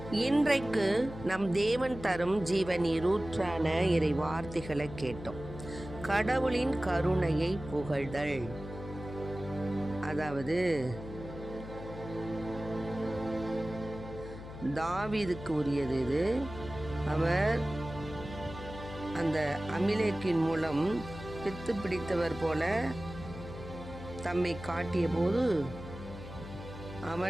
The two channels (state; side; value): noise; left; hum, 12 dB below the sound